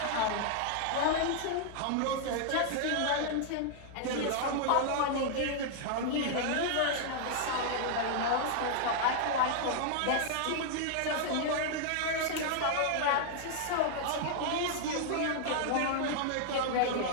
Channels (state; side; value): different; both; correlation 0.00